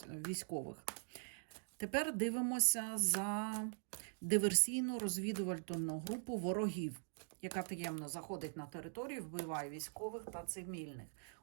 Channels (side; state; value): left; silent; digital silence